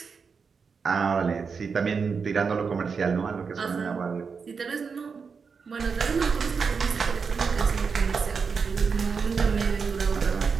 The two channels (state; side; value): quieter; left; 5.5 dB